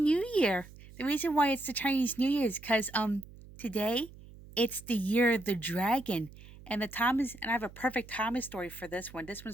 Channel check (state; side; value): noise; right; hum, 19 dB below the sound